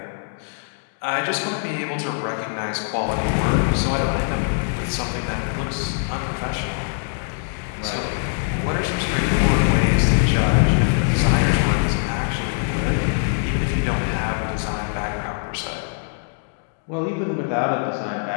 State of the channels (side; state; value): right; silent; 64 dB below the other